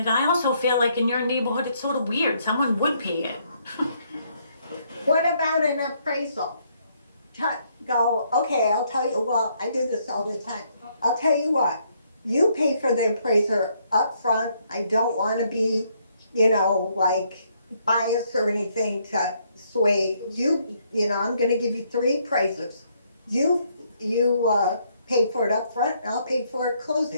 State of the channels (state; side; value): inverted; both; correlation -0.71